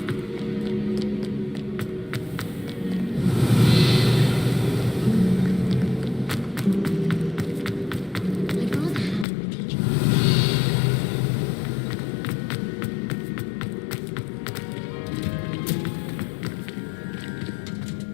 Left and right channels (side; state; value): right; drops out; at 9.2 s